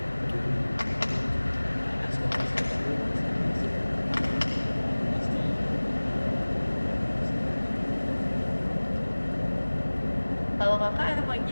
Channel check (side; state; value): both; inverted; correlation -1.00